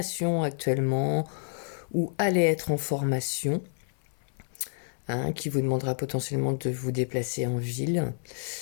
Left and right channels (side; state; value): right; silent; 59 dB below the other